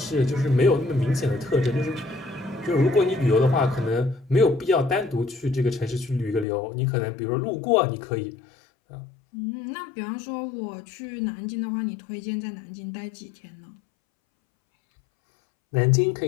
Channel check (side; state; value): right; drops out; at 6.5 s